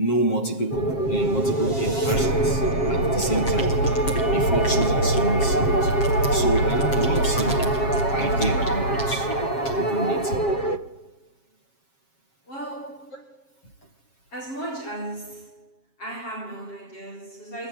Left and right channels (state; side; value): late; right; 7.4 ms